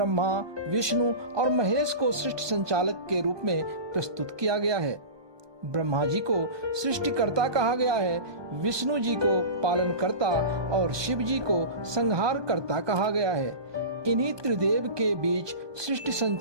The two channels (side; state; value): left; late; 1.2 ms